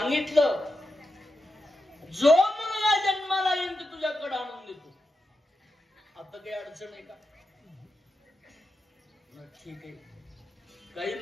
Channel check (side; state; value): both; normal; correlation 0.88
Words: जो मुलगा जन्माला येईल ते तुझ्याकडे आणून देतो. आता काही अडचण आहे का? ठीक आहे. काही